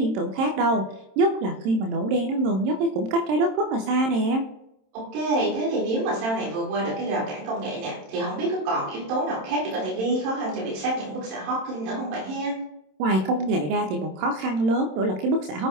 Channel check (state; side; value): late; left; 27 ms